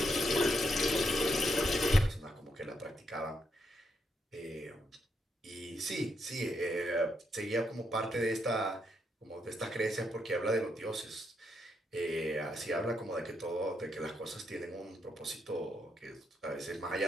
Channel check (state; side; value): normal; both; correlation 0.79